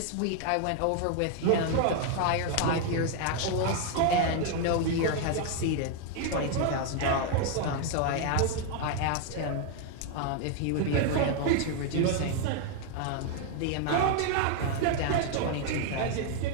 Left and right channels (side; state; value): both; different; correlation 0.01